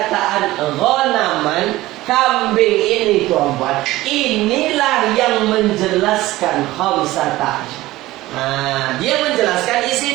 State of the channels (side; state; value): left; quieter; 17.5 dB